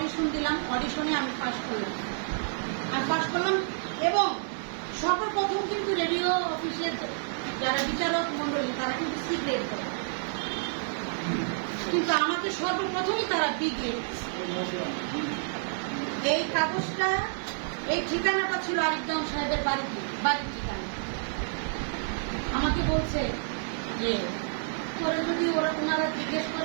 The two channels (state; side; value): silent; left; digital silence